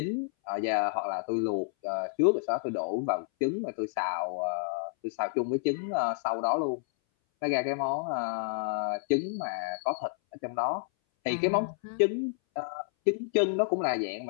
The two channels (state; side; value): silent; right; 58 dB below the other